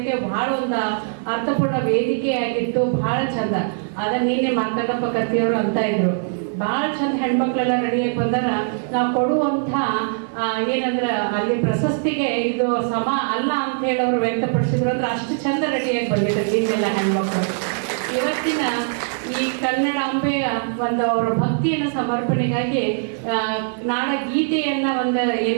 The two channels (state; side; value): silent; left; 65 dB below the other